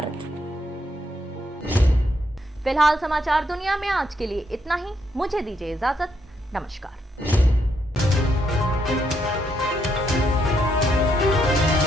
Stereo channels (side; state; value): both; normal; correlation 0.76